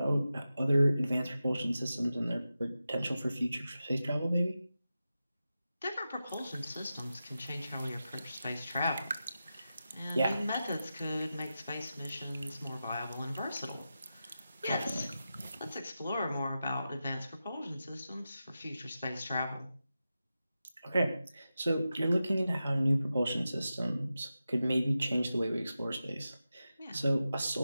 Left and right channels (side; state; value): both; inverted; correlation -0.92